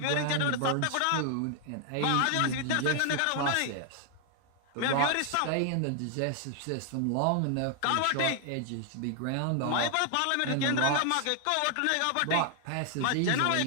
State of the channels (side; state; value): both; different; correlation 0.00